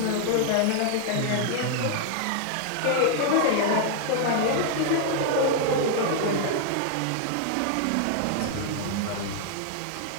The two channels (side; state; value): both; different; correlation 0.00